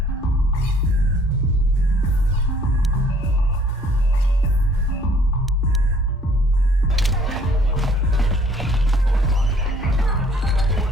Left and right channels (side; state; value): both; normal; correlation 0.59